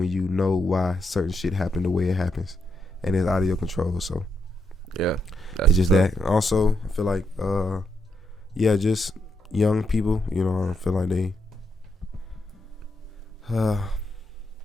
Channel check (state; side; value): normal; both; correlation 0.80